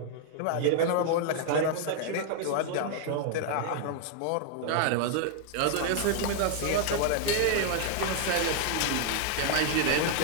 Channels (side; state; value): both; different; correlation 0.00